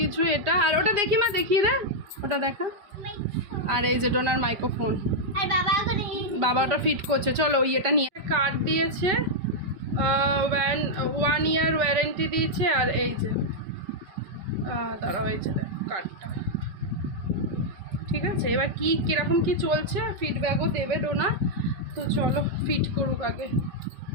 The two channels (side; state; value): left; late; 5.2 ms